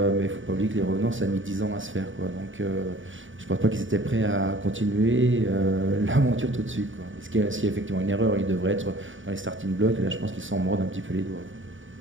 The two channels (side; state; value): left; late; 0.57 ms